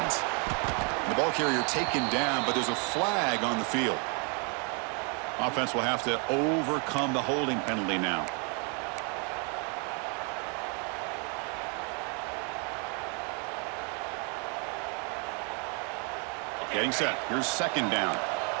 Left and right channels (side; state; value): left; quieter; 36.3 dB